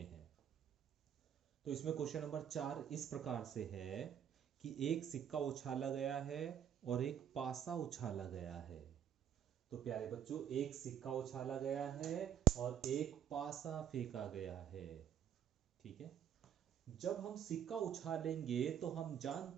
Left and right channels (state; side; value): quieter; left; 9.4 dB